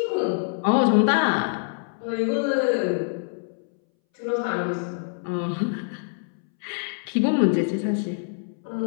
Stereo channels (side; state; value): right; silent; 61 dB below the other